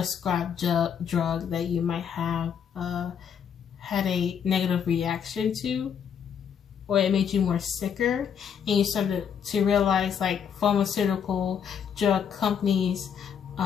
drug that you might have had a negative reaction to, or it made you more sicker, and you started to realize like pharmaceutical drug companies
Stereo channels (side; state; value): right; quieter; 7.8 dB